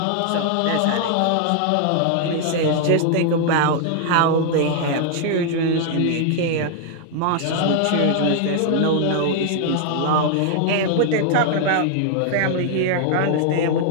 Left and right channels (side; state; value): both; different; correlation 0.00